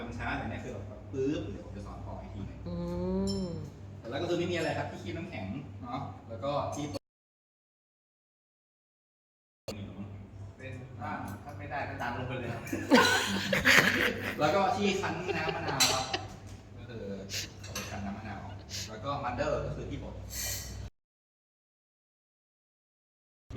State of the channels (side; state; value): both; identical; correlation 1.00